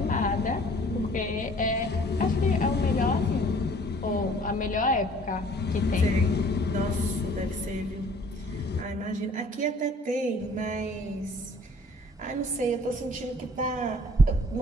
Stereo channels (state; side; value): normal; both; correlation 0.54